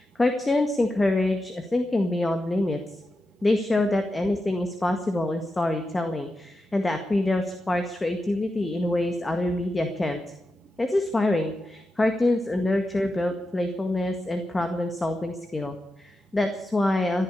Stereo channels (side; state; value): both; normal; correlation 0.89